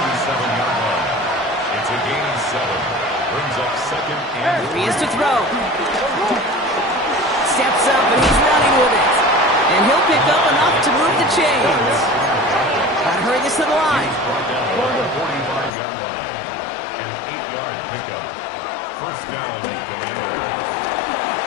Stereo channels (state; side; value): drops out; right; at 15.7 s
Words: line. It's a gain of 7. Brings up 2nd and Here he is to throw. Steps up and he's running with it. And he'll pick up enough to move the chains. Gotta hurry this to the line. brought down at the 45-yard line. An 8-yard pickup. First down, Commanders.